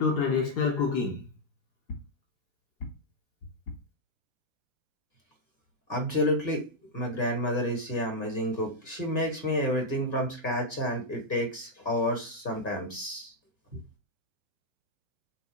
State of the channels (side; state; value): right; late; 1.5 ms